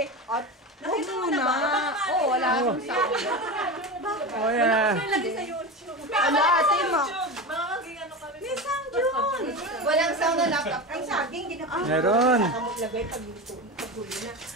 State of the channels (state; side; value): normal; both; correlation 0.24